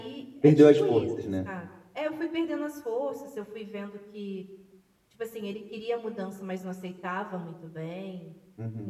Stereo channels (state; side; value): identical; both; correlation 1.00